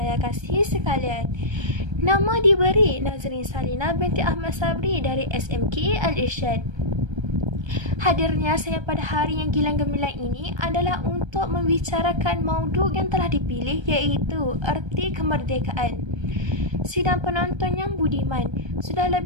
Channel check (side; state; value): left; late; 1.3 ms